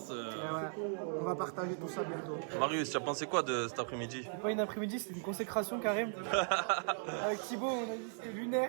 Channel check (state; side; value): silent; left; 53 dB below the other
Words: On va partager tout ça bientôt. Marius, tu as pensé quoi de cet après-midi? Pas une après-midi, c'était une consécration Karim. Avec Thibaut, on a dit c'était